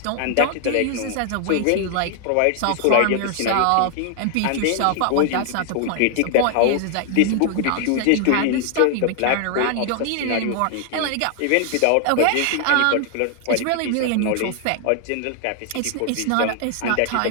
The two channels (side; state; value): both; different; correlation 0.00